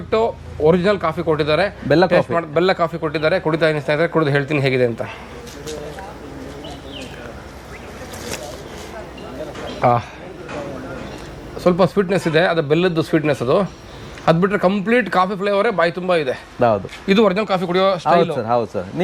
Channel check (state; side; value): identical; both; correlation 1.00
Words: ಒರಿಜಿನಲ್ ಕಾಫಿ ಕೊಟ್ಟಿದ್ದಾರೆ. ಬೆಲ್ಲ ಕಾಫಿ ಕೊಟ್ಟಿದ್ದಾರೆ. ಕುಡಿತಾ ಇದ್ದೀನಿ ಸ್ನೇಹಿತರೆ, ಕುಡಿದು ಹೇಳ್ತೀನಿ ಹೇಗಿದೆ ಅಂತ. ಸ್ವಲ್ಪ ಸ್ವೀಟ್ನೆಸ್ ಇದೆ, ಅದು ಬೆಲ್ಲದ್ದು ಸ್ವೀಟ್ನೆಸ್. ಅದು ಬಿಟ್ಟರೆ ಕಂಪ್ಲೀಟ್ ಕಾಫಿ ಫ್ಲೇವರೇ ಬಾಯಿ ತುಂಬ ಇದೆ. ಹೌದು, ಇದು ಒರಿಜಿನಲ್ ಕಾಫಿ ಕುಡಿಯೋ ಸ್ಟೈಲ್ ಸರ್. ಹೌದು ಸರ್.